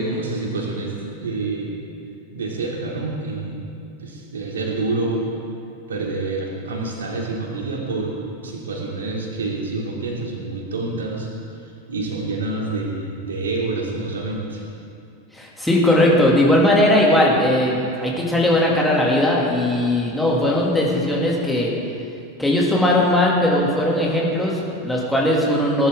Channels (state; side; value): normal; both; correlation 0.34